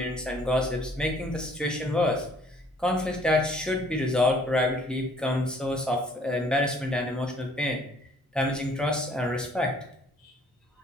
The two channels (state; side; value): normal; both; correlation 0.59